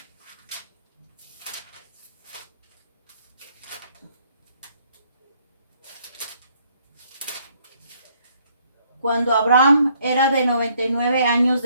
Cuando Abraham era de 99 años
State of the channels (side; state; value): both; inverted; correlation -0.67